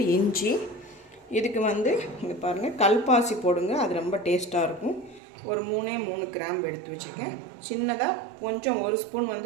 இஞ்சி. இதுக்கு இங்கே பாருங்கள், கல்பாசி போடுங்க, அது ரொம்ப டேஸ்ட்டாக இருக்கும். ஒரு 3 கிராம்பு எடுத்து வச்சுருக்கேன். சின்னதாக கொஞ்சம் 1 ஸ்பூன்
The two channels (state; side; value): drops out; left; at 5.2 s